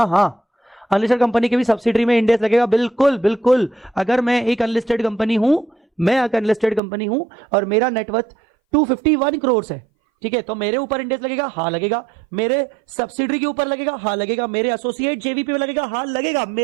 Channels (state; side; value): drops out; left; at 6.8 s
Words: अनलिस्टेड कंपनी के भी सब्सिडरी में इंडेक्स लगेगा। बिल्कुल बिल्कुल, अगर मैं एक अनलिस्टेड कंपनी हूं, और मेरा नेटवर्थ 251 करोड़ है, ठीक है, तो मेरे ऊपर इंडेक्स लगेगा? हाँ लगेगा। मेरे सब्सिडरी के ऊपर लगेगा? हाँ लगेगा। मेरे एसोसिएट जेवीपी पे लगेगा? हाँ लगेगा।